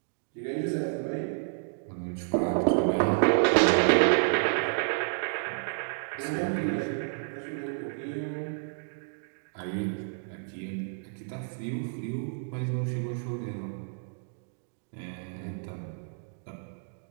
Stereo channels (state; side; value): silent; left; digital silence